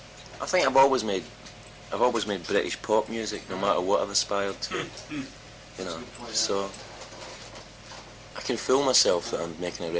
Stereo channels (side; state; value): both; identical; correlation 1.00